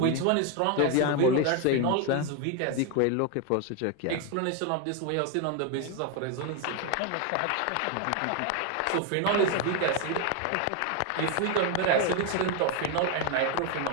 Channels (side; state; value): both; different; correlation 0.01